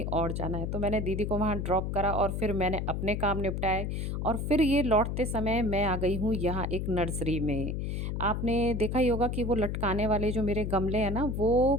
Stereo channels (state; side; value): noise; left; hum, 2 dB below the sound